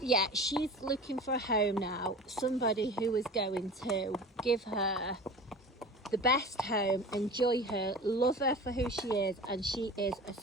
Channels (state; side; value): normal; both; correlation 0.36